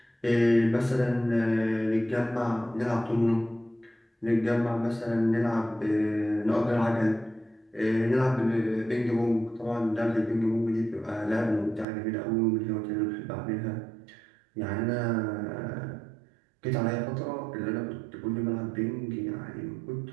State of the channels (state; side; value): drops out; left; at 11.9 s